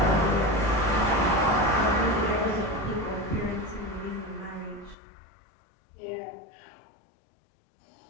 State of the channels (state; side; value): drops out; right; at 5.0 s